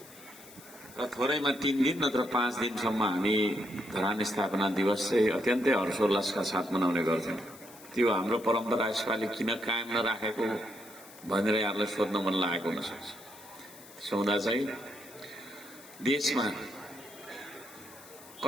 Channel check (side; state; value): left; noise; hiss, 20 dB below the sound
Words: र थोरैमा 3 दिन नत्र 5 दिनसम्म हामी धरान स्थापना दिवस चाहिँ अत्यन्तै हर्षोल्लासका साथ मनाउने गर्थ्यौं। त्यो हाम्रो परम्परा यसपालि किन कायम नराखेको भनेर यहाँलाई सोध्न मन लागेको हुन सक्छ। सौदा चाहिँ देशमा